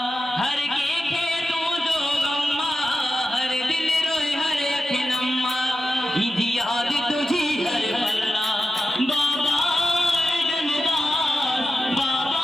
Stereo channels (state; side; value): normal; both; correlation 0.92